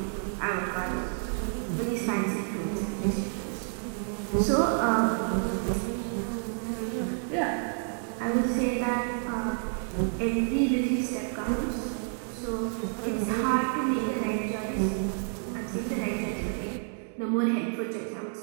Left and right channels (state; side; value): silent; left; 58 dB below the other